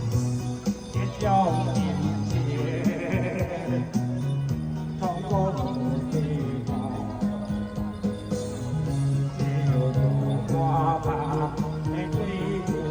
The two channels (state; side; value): identical; both; correlation 1.00